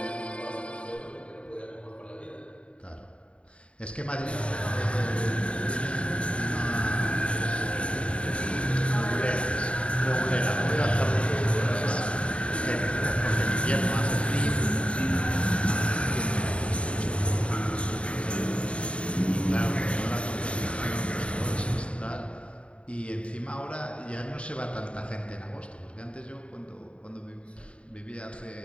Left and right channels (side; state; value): right; late; 0.060 ms